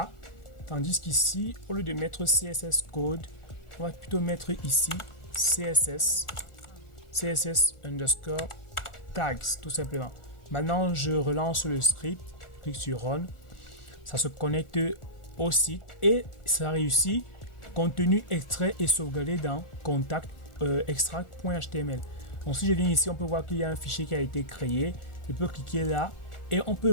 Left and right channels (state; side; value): late; right; 1.4 ms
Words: tandis qu'ici au lieu de mettre CSS code, on va plutôt mettre ici CSS underscore tags, tout simplement. Maintenant je relance le script, je clique sur run, ça se connecte au site et ça réussit. Contenu extrait et sauvegardé dans contact extract.html. Donc si je viens ici, on peut voir qu'il y a un fichier qui a été créé. Je peux cliquer là et on peut